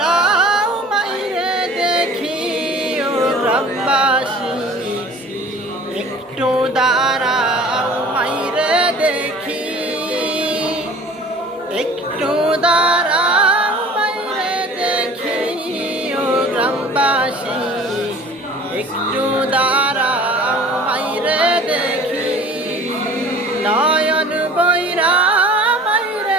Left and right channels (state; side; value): normal; both; correlation 0.46